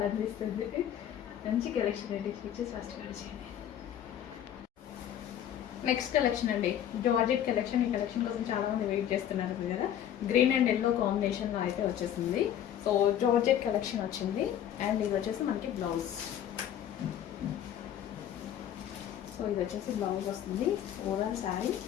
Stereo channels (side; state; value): right; quieter; 10.4 dB